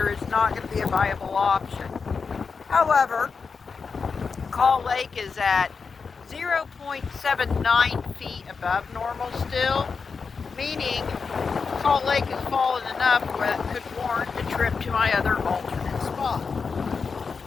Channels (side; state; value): right; quieter; 5.2 dB